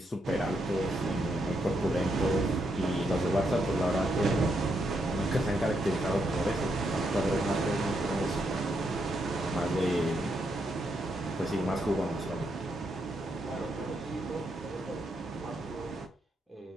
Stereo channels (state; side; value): normal; both; correlation 0.79